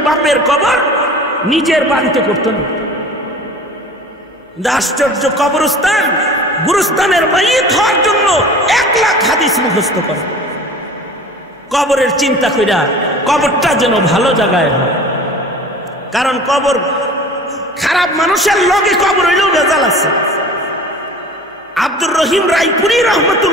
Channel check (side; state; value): both; normal; correlation 0.42